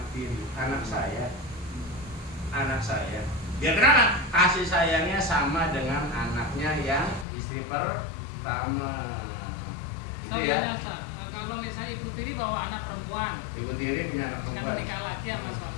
tiri, anak saya. Ya kenapa? Kasih sayangnya sama dengan anaknya yang istri pertama. Itu ya. Kalau misalnya ibu tiri bawa anak perempuan, Ibu tiri punya anak kan perempuan. menikah lagi sama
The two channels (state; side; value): drops out; right; at 7.2 s